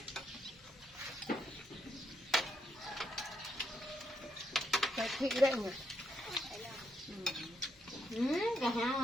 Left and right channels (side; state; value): both; normal; correlation 0.78